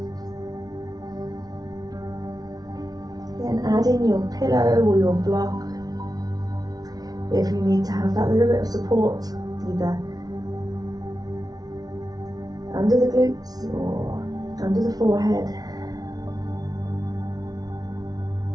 Then add in your pillow or your block if you need to have that little bit of support, either under the glutes or under the forehead.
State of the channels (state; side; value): late; left; 0.19 ms